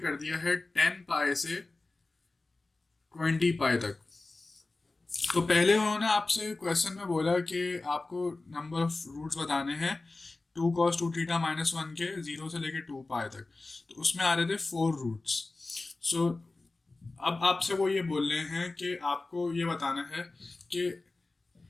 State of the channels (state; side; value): quieter; right; 3.3 dB